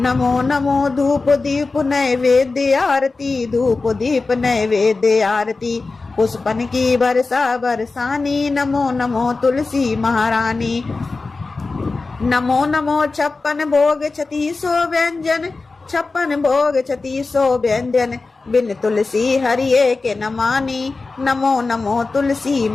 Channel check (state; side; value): quieter; right; 3.8 dB